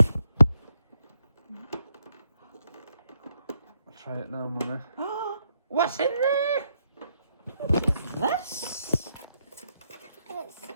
Try it now, Mummy. What's in there? What is this? It's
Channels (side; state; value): both; inverted; correlation -0.78